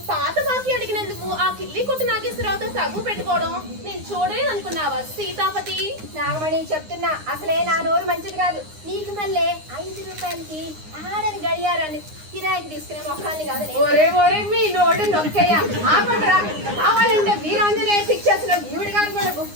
పాత బాకీ అడిగినందుకు ఆ కిల్లి కొట్టు నాగేశ్వరరావుతో తగ్గు పెట్టుకోవడం నేను చూడలేదు అనుకున్నావా సీతాపతి? నాగమణి చెప్తున్నా, అసలే నా నోరు మంచిది కాదు. నీకు మళ్ళీ 5 రూపాయలకి ఆడని గడియారాన్ని కిరాయికి తీసుకునే మొక్కల్ని కాదు. ఒరే మీ నోడు నొక్కయ్యా, ఆపండ్రా. కావాలంటే వీరాంజనేయ పిక్చర్స్ లో ఈవిడ గారు కూడా బుక్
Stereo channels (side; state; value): left; late; 9.7 ms